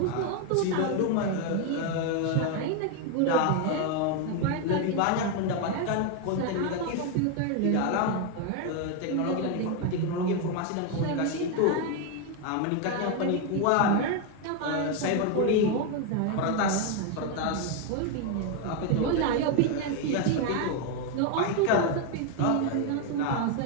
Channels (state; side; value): different; both; correlation 0.01